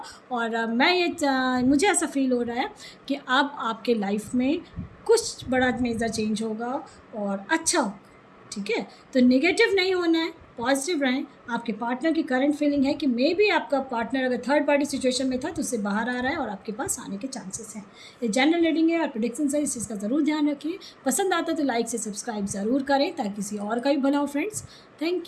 और मुझे ऐसा फील हो रहा है कि अब आपके लाइफ में कुछ बड़ा मेजर चेंज होगा और अच्छा होगा। ठीक है, तो नेगेटिव नहीं होना है, पॉजिटिव रहें। आपके पार्टनर की करंट फीलिंग है कि मे बी आपका पार्टनर अगर थर्ड पार्टी सिचुएशन में था तो उससे बाहर आ रहा है और आपके पास आने के चांसेस हैं। ये जनरल रीडिंग है और प्रेडिक्शन है, इस चीज़ का ज़रूर ध्यान रखिए। पसंद आता तो लाइक से सब्सक्राइब ज़रूर करें ताकि किसी और का भी भला हो फ्रेंड्स।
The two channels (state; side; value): identical; both; correlation 1.00